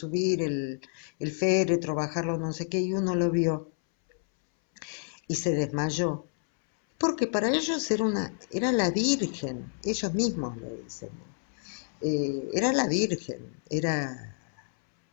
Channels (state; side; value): silent; right; 59 dB below the other